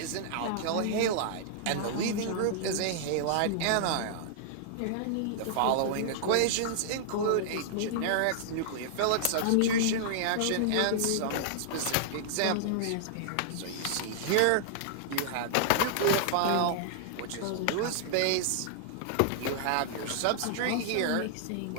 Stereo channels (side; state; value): both; different; correlation -0.01